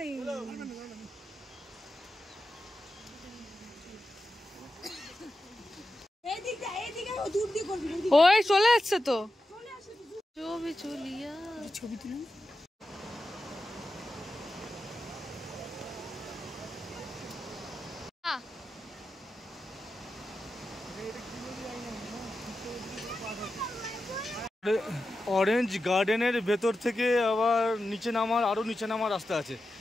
ওই চলে যাচ্ছে তো, ছবি চলিয়া ছবি তুলুন। অরেঞ্জ গার্ডেনের ভেতর থেকে আবার নিচে নামার, আরও নিচে নামার রাস্তা আছে।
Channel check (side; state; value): both; normal; correlation 0.91